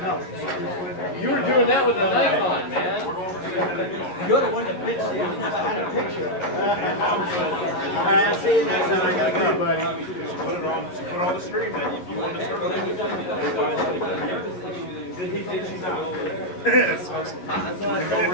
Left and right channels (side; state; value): right; late; 11 ms